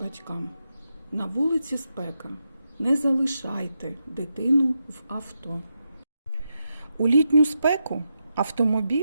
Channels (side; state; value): both; inverted; correlation -0.86